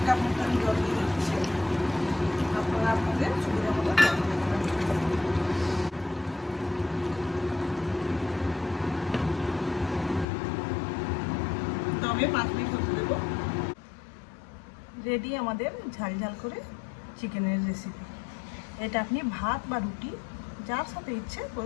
মতো আমি জল দিয়ে দিচ্ছি। আপনারা আপনাদের সুবিধা মতো জল দিয়ে দেবেন। তবে 5 মিনিট হতে দেবো। রেডি আমাদের ঝাল ঝাল করে চিকেনের রেসিপি। এটা আপনি ভাত বা রুটি যার সাথে ইচ্ছে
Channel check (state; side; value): drops out; right; at 10.2 s